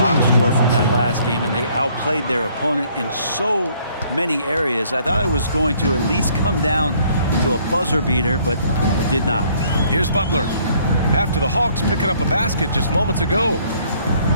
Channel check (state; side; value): inverted; both; correlation -0.62